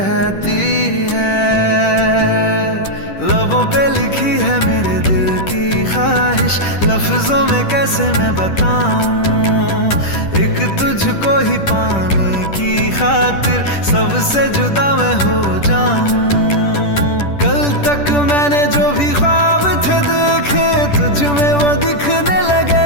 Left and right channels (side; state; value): right; late; 10 ms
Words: है। लबों पे लिखी है मेरे दिल की ख्वाहिश, लफ्जों में कैसे मैं बताऊं, एक तुझको ही पाने की खातिर सबसे जुदा मैं हो जाऊं। कल तक मैंने जो भी ख्वाब थे देखे तुझ में वो दिखने